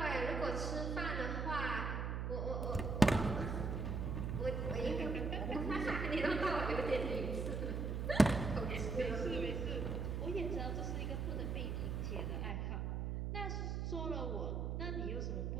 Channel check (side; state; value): right; noise; hum, 1 dB below the sound